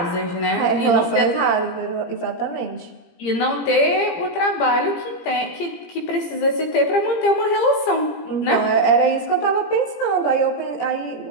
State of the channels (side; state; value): right; late; 17 ms